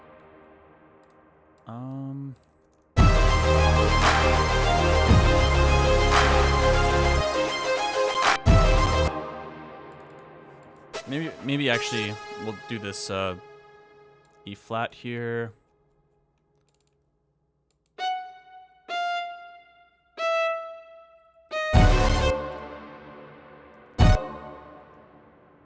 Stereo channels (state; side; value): identical; both; correlation 1.00